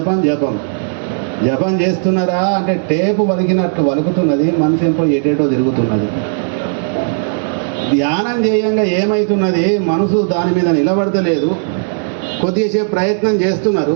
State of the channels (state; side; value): silent; left; digital silence